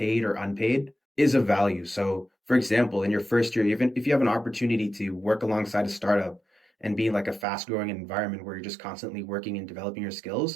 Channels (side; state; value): left; drops out; at 7.5 s